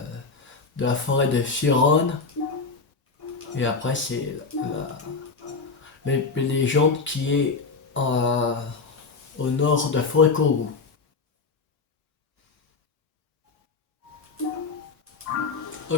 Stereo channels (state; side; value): quieter; right; 4.4 dB